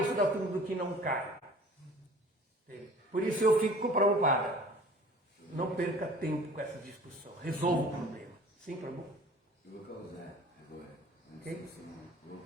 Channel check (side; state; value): both; normal; correlation 0.46